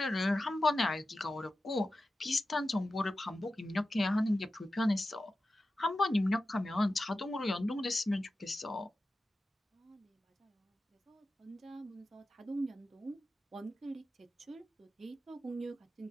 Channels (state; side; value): normal; both; correlation 0.93